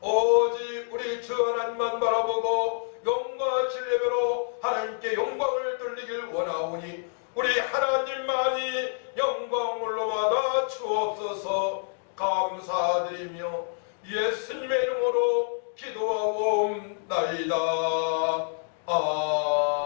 오직 우리 주 하나님만 바라보고 영과 진리로 하나님께 영광을 돌리길 원하오니 우리 하나님만이 영광을 받아 주옵소서. 감사드리며 예수님의 이름으로 기도하옵나이다.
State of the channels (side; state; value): right; silent; digital silence